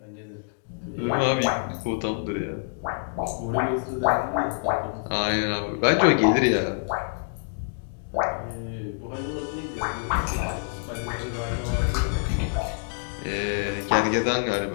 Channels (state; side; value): silent; right; digital silence